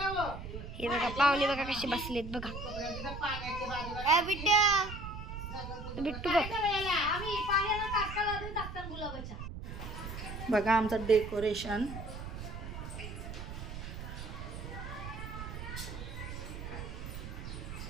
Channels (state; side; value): noise; right; rumble, 8 dB below the sound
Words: हे बघा पाहुणे बघा कशी बसलेत बघा. बिट्टू बघा आमचं डेकोरेशन.